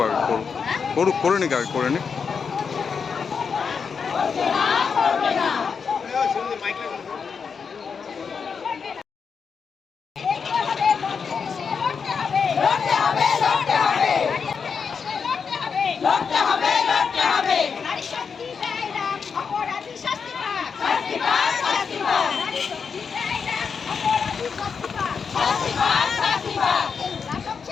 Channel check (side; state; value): right; quieter; 5.9 dB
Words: আগে করে নিক আগে করে নিক।